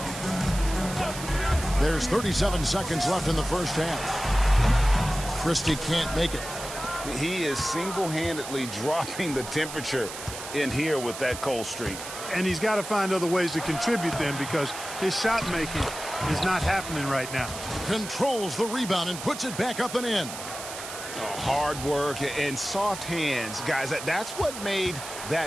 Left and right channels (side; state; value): right; noise; hiss, 10 dB below the sound